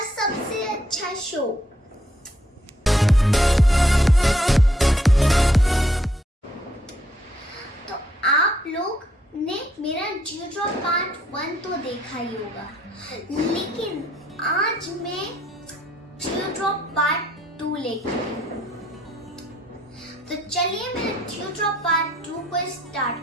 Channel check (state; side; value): normal; both; correlation 0.70